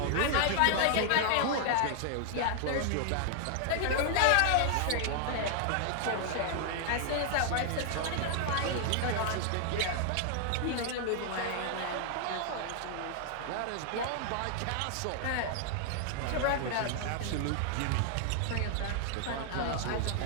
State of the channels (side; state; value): both; different; correlation 0.00